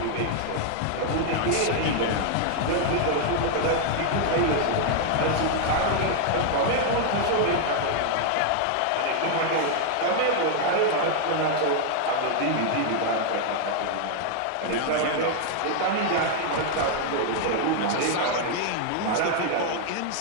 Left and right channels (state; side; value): different; both; correlation 0.00